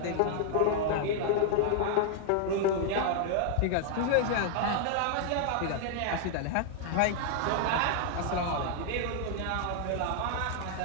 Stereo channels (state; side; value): different; both; correlation -0.01